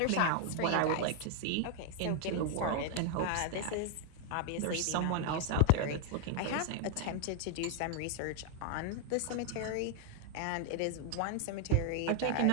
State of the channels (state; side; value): different; both; correlation 0.00